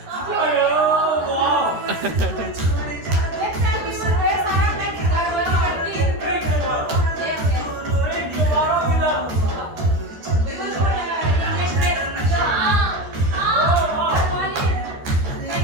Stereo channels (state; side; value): late; left; 13 ms